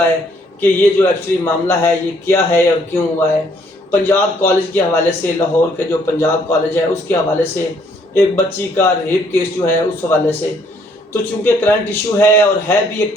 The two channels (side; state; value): both; normal; correlation 0.66